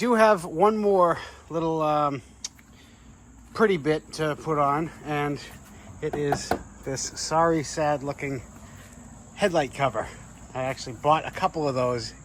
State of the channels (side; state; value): both; identical; correlation 1.00